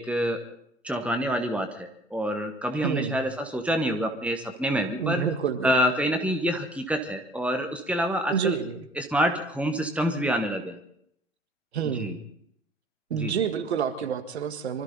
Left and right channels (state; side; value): normal; both; correlation 0.53